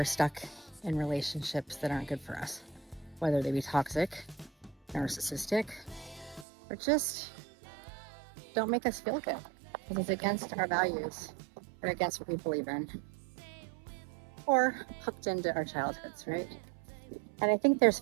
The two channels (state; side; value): drops out; left; at 6.5 s